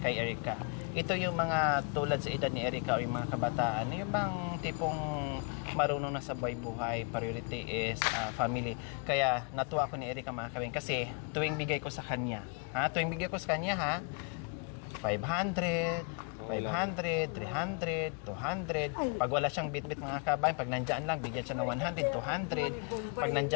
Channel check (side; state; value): right; quieter; 33.9 dB